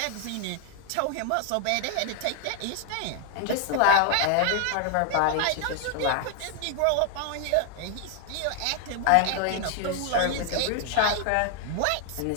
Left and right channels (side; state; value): both; different; correlation 0.00